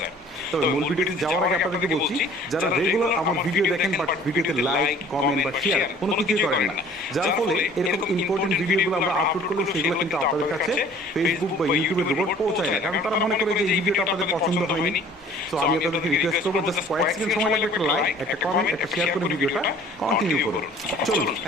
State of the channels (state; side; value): normal; both; correlation 0.51